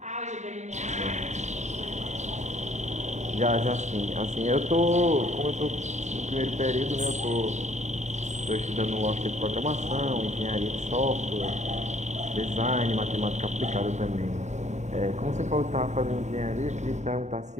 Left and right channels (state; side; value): late; left; 0.34 ms